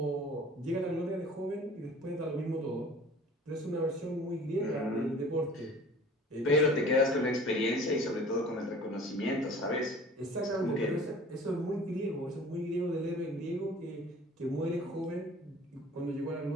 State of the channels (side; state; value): both; normal; correlation 0.46